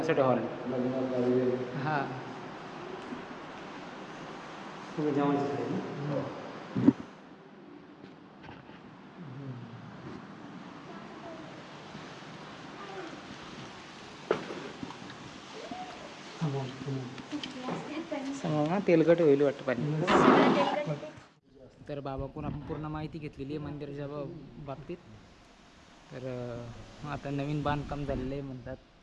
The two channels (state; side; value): identical; both; correlation 1.00